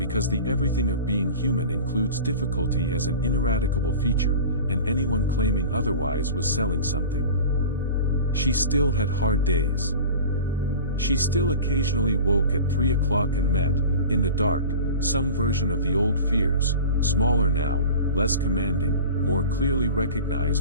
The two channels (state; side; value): inverted; both; correlation -0.36